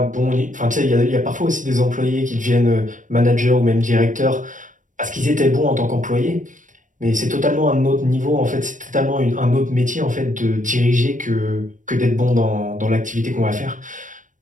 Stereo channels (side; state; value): left; late; 0.37 ms